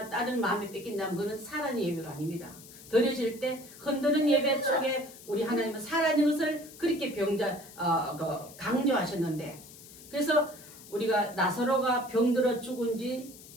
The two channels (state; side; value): noise; left; hiss, 18 dB below the sound